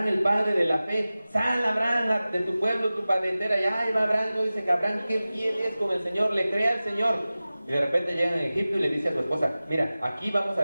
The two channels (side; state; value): both; inverted; correlation -0.97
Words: el padre de la fe? Sal, Abraham, de tu pueblo, tu parentela. Y ahí va Abraham, no dice que Abraham, qué fiel es con el Señor, le cree al Señor. Y de repente llega a Egipto y le dice a su esposa, mira, aquí vamos a